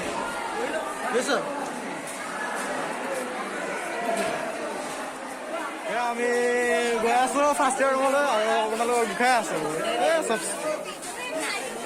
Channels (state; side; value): identical; both; correlation 1.00